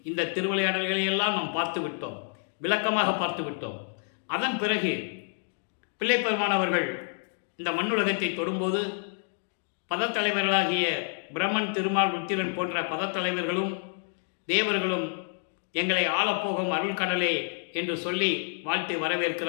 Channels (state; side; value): silent; right; 59 dB below the other